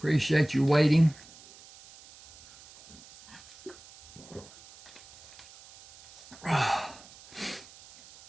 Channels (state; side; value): noise; right; hiss, 22 dB below the sound